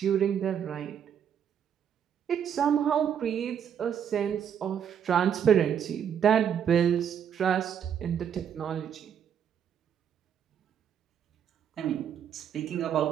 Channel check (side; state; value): left; quieter; 8.5 dB